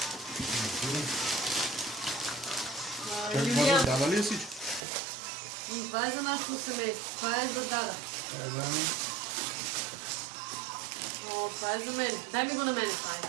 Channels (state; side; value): drops out; left; at 4.8 s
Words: Юлиан, Дава ли е всичко? това е за нашето семейство, това е за Дада. О, това е за мен. Дай ми го на мене, това е.